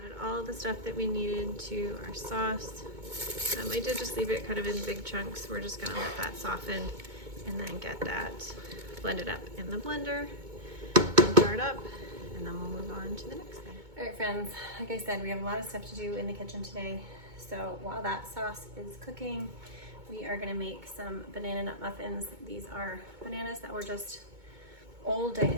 all the stuff that we needed to our sauce. I did just leave it kind of in big chunks. We're just gonna let that soften and then get that blended up in the blender and jar it up, and then we'll move on to the next thing. All right, friends, like I said, we have a lot of stuff to do in the kitchen today. So while that sauce is cooking, we are gonna make some banana nut muffins. These are bananas that were just old. I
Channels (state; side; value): late; left; 2.2 ms